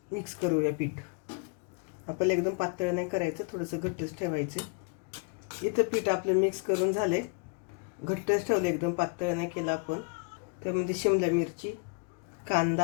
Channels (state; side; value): quieter; right; 32.4 dB